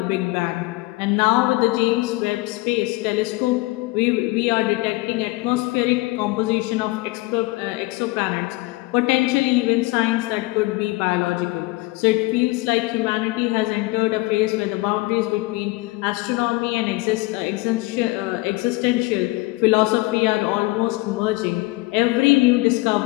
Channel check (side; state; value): right; quieter; 22.0 dB